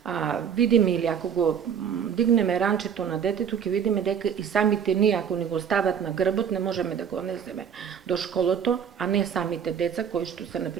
видиме или ако го дигнеме ранчето на детето, ќе видиме дека и самите ние, ако ни го стават на грбот, не можеме да го несеме до школото, а не самите деца, кои што се,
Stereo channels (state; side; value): quieter; left; 7.7 dB